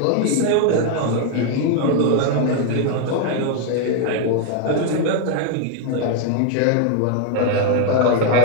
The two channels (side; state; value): both; different; correlation 0.00